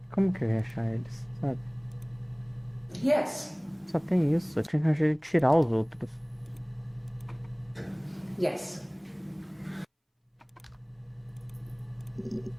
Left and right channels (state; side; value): identical; both; correlation 1.00